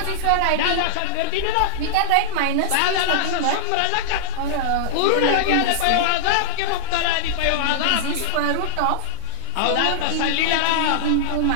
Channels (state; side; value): different; both; correlation 0.00